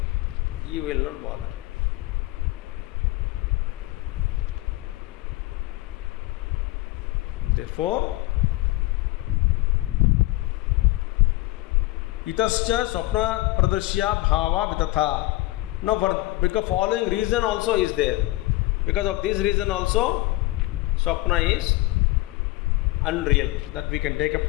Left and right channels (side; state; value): right; quieter; 19.3 dB